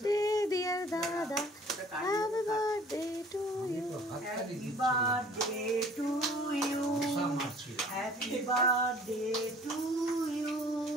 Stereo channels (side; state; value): both; normal; correlation 0.52